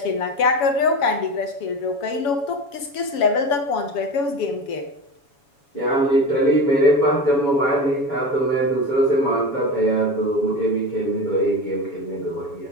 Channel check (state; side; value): late; right; 7.1 ms